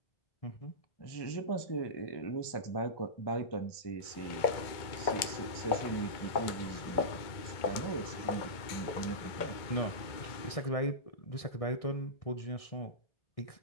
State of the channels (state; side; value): late; right; 2.2 ms